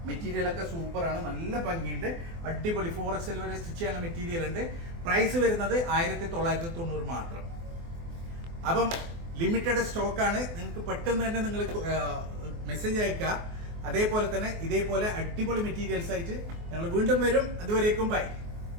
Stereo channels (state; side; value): late; left; 24 ms